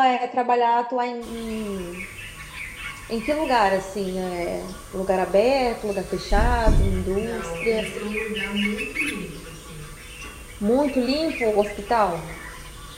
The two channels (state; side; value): identical; both; correlation 1.00